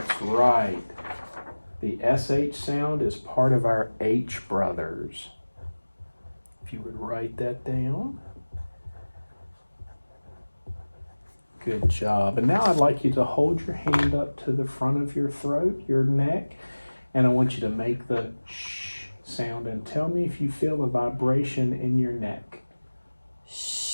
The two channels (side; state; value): both; inverted; correlation -1.00